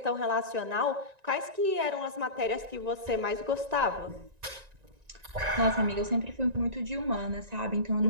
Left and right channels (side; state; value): left; late; 1.9 ms